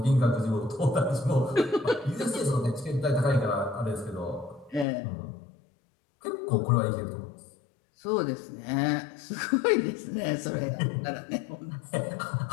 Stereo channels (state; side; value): drops out; right; at 4.9 s